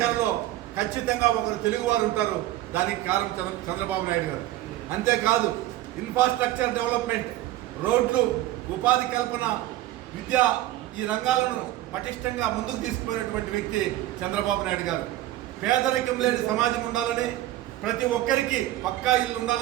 ఖచ్చితంగా ఒకరు తెలుగువారు ఉంటారు. దానికి కారణం చంద్రబాబు నాయుడు గారు. అంతేకాదు ఇన్ఫ్రాస్ట్రక్చర్ డెవలప్మెంట్, రోడ్లు, ఉపాధి కల్పన, విద్య, ఈ రంగాలను పటిష్టంగా ముందుకు తీసుకుపోయినటువంటి వ్యక్తి చంద్రబాబు నాయుడు గారు. పేదరికం లేని సమాజం ఉండాలని, ప్రతి ఒక్కరికి పక్కా ఇల్లు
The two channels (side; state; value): left; quieter; 15.1 dB